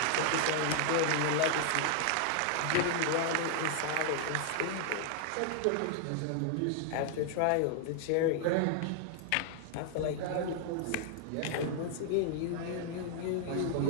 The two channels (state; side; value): different; both; correlation 0.00